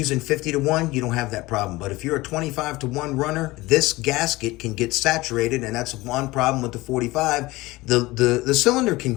50-to-1, you don't have that problem. But if you're a 25-to-1 runner, this gasket can get saturated, and that's one problem with the 45. The cylinder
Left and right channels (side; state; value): right; quieter; 20.1 dB